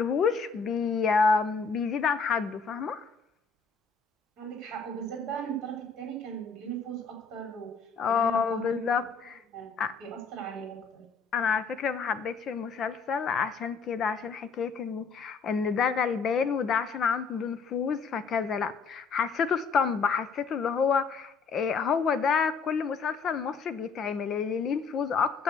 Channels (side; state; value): right; quieter; 5.1 dB